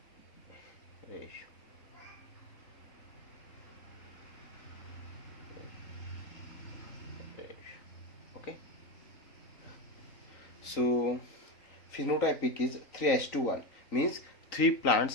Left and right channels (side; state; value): right; late; 3.9 ms